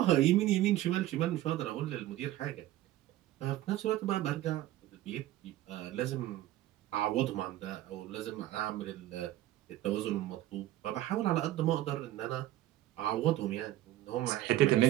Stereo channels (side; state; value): left; quieter; 14.7 dB